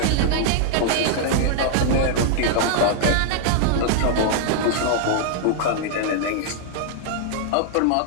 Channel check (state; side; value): different; both; correlation -0.01